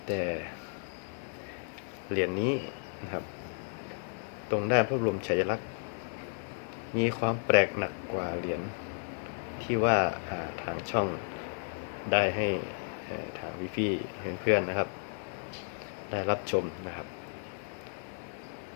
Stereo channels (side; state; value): right; silent; 56 dB below the other